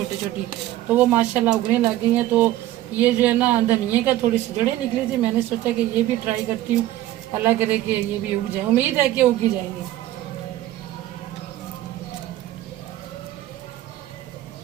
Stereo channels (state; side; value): quieter; left; 14.6 dB